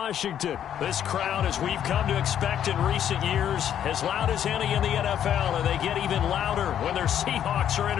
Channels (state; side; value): quieter; right; 9.9 dB